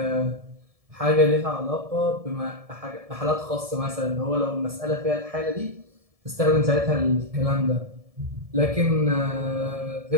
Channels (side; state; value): left; late; 1.7 ms